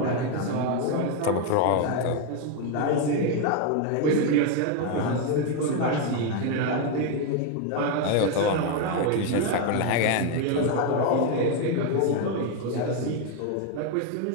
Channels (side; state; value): both; different; correlation 0.02